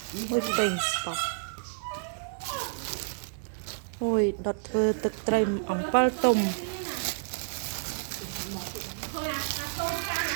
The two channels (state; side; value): silent; left; digital silence